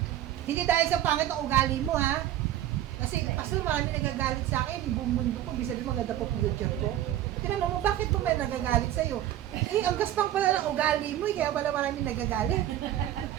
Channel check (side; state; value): left; quieter; 12.5 dB